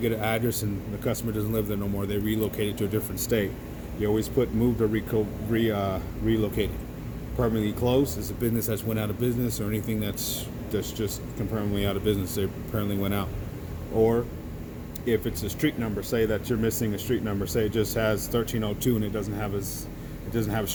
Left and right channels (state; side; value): identical; both; correlation 1.00